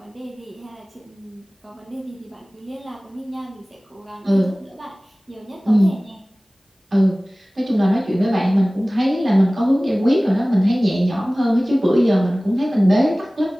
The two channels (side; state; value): both; normal; correlation 0.98